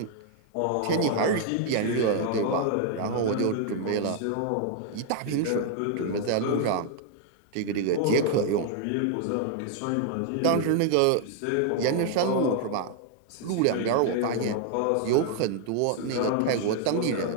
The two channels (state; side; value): different; both; correlation 0.00